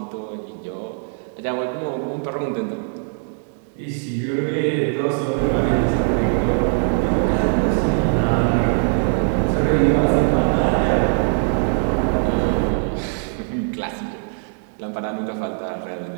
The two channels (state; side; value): silent; left; 57 dB below the other